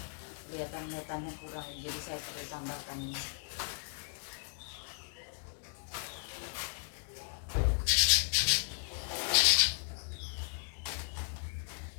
Kelihatan metannya kurang, jadi saya perlu tambahkan ini.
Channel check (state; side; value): silent; right; 54 dB below the other